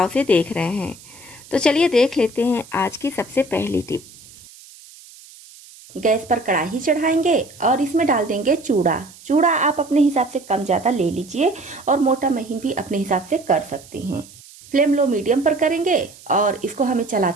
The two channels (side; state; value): right; noise; hiss, 21 dB below the sound